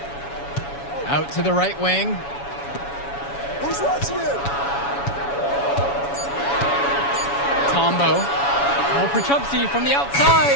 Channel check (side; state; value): right; late; 7.1 ms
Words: Out to the right wing. Who's watching it? Tombo. Oh, Prachumsi from the outside.